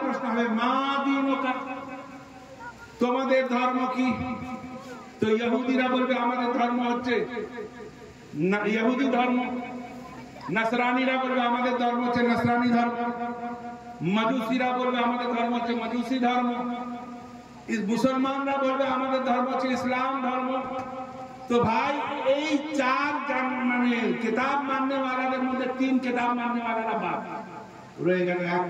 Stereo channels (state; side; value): identical; both; correlation 1.00